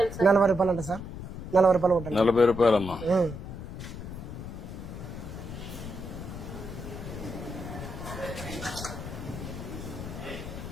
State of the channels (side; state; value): left; noise; rumble, 9 dB below the sound